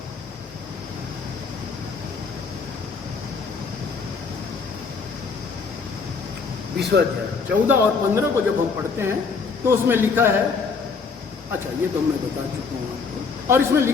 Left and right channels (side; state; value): right; quieter; 5.0 dB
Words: 20वां अध्याय 14 और 15 को जब हम पढ़ते हैं तो उसमें लिखा है, अच्छा ये तो मैं बता चुका हूं आपको, और इसमें